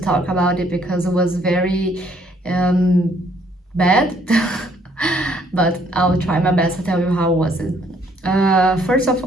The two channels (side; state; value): both; normal; correlation 0.65